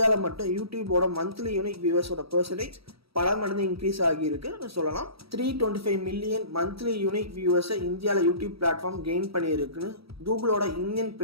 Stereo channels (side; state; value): left; late; 0.76 ms